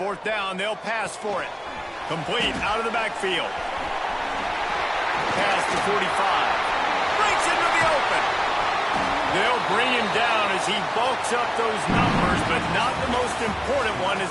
down, they'll pass for it. Complete out of the backfield. Pass to 45. Breaks into the open. They'll bring him down as he bulks up those numbers, but not the most important one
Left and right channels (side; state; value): both; identical; correlation 1.00